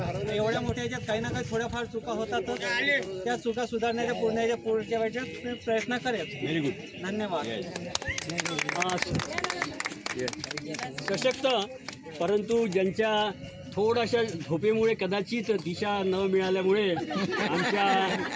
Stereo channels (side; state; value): both; identical; correlation 1.00